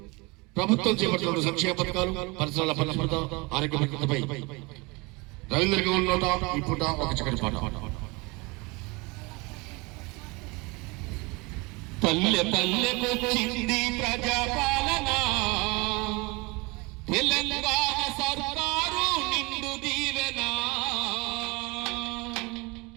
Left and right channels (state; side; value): quieter; left; 26.3 dB